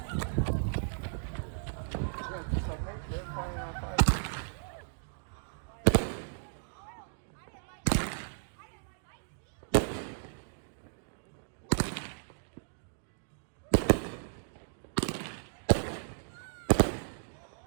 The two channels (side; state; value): left; silent; digital silence